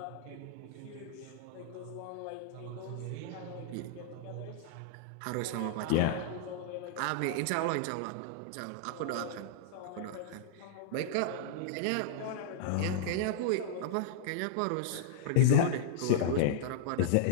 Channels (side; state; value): both; different; correlation -0.01